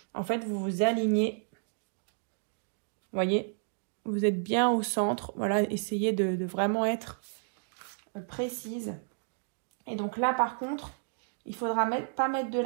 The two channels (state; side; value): silent; left; digital silence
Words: en fait, vous vous alignez. Vous voyez, vous êtes bien au centre. Voilà, essayez de vraiment être précise. Et donc là, par contre, il faudra pas mettre de